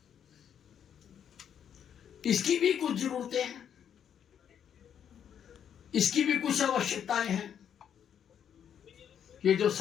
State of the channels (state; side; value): quieter; right; 8.7 dB